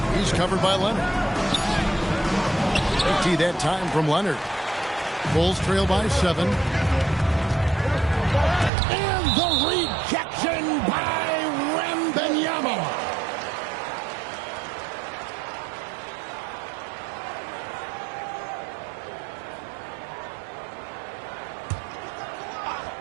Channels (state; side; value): drops out; left; at 8.7 s